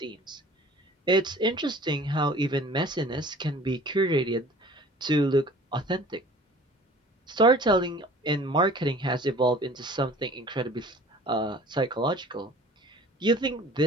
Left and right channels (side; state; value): both; normal; correlation 0.47